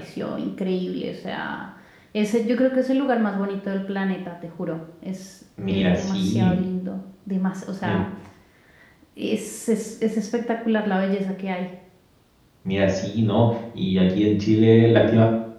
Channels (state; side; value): identical; both; correlation 1.00